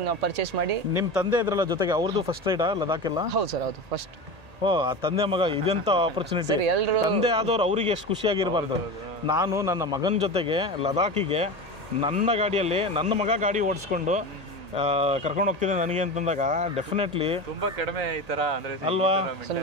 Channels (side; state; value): left; late; 1.8 ms